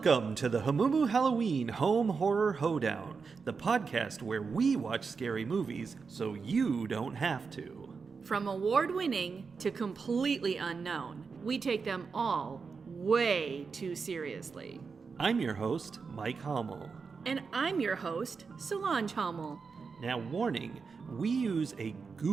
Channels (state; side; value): quieter; left; 5.2 dB